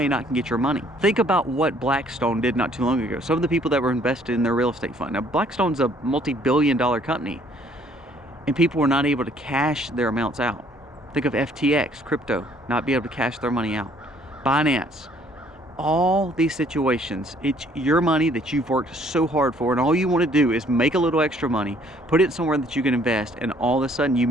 not get your money? Think about what Blackstone did not too long ago. Some of the people that were invested in their real estate fund. Now, Blackstone's a multi-billion-dollar company, and people were not able to cash their amounts out. Think of FTX, crypto, not be able to cash their money out. Binance. All these situations, it's your money that you've worked so hard for, and all you want to do is make a little extra money, put it somewhere that you can invest, and all of a sudden you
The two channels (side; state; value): both; normal; correlation 0.61